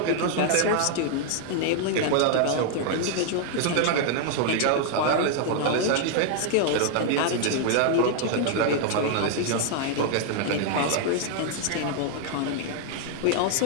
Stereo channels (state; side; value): different; both; correlation 0.00